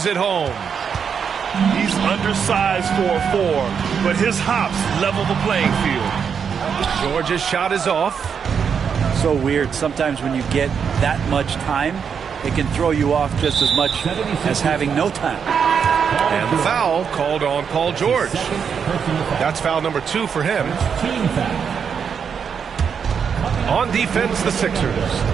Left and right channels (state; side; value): quieter; left; 6.9 dB